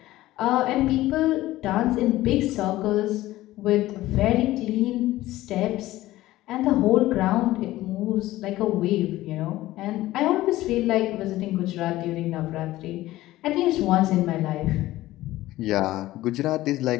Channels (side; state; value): right; quieter; 16.3 dB